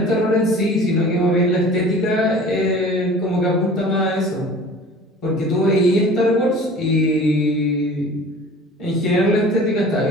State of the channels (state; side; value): normal; both; correlation 0.44